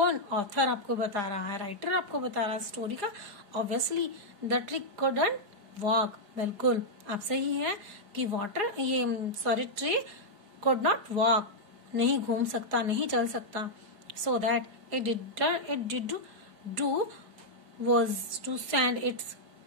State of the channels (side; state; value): left; late; 4.9 ms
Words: ऑथर आपको बता रहा है, राइटर आपको बता रहा है स्टोरी का। Obviously the tree couldn't walk, बिल्कुल आप सही है कि ट्री कुड नॉट वॉक, नहीं घूम सकता, नहीं चल सकता। So that it did do was to send its